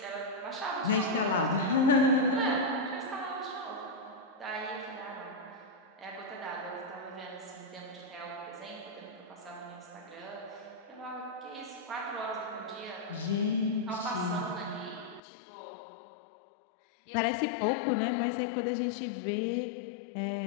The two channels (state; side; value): drops out; right; at 15.2 s